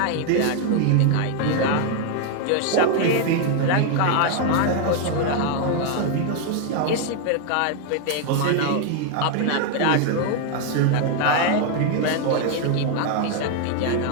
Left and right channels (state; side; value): different; both; correlation 0.00